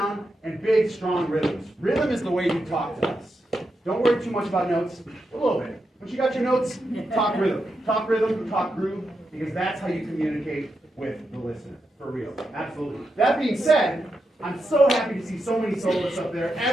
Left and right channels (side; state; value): both; normal; correlation 0.86